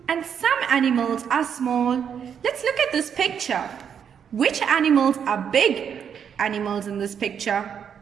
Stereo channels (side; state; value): left; quieter; 7.8 dB